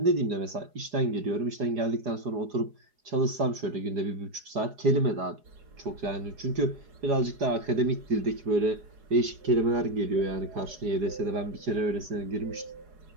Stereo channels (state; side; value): late; left; 4.8 ms